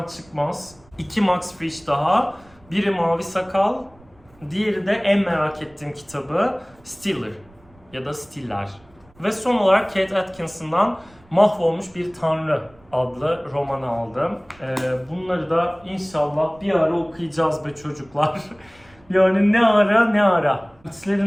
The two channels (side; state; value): right; noise; rumble, 28 dB below the sound